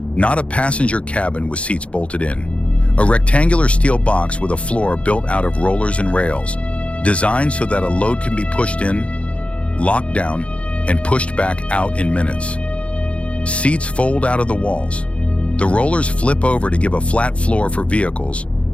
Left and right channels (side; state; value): right; late; 0.061 ms